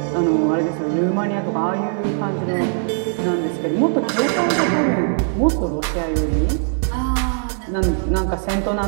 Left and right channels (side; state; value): left; silent; digital silence